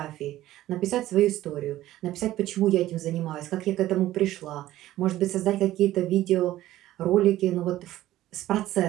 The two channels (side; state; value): left; quieter; 14.7 dB